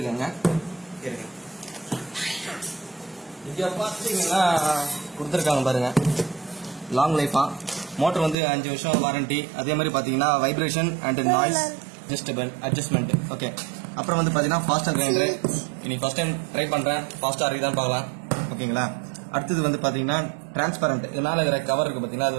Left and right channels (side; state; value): left; drops out; at 8.3 s